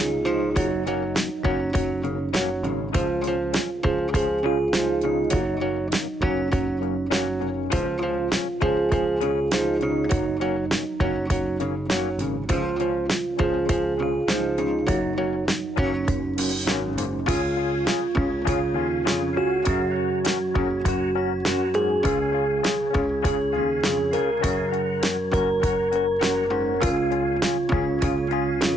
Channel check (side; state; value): both; normal; correlation 0.79